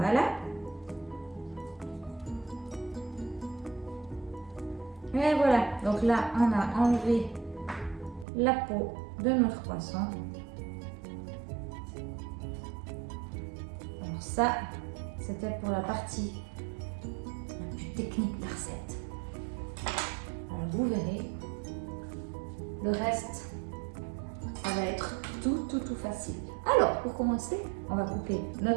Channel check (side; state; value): left; drops out; at 8.2 s